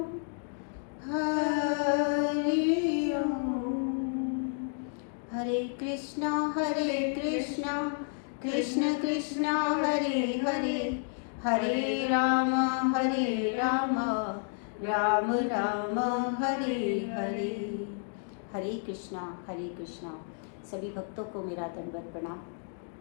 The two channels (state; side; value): silent; right; 57 dB below the other